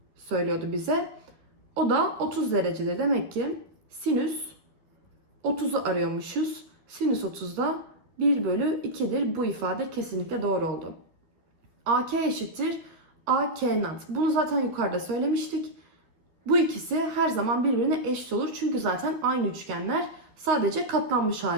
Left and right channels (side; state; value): left; late; 12 ms